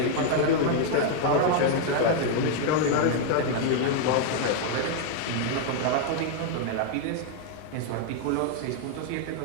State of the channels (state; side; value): different; both; correlation 0.00